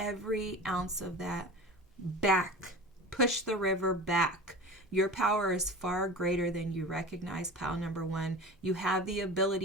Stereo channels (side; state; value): both; normal; correlation 0.34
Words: ounce of that back. Push the river back. Your power is far greater than you recognize, pile number one. You have the